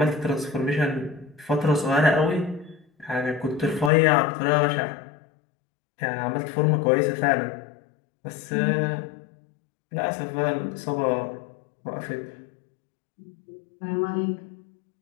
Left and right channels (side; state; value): right; drops out; at 3.9 s